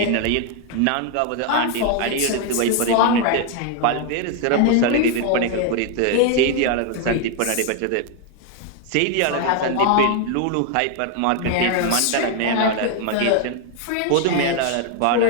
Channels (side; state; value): both; different; correlation 0.01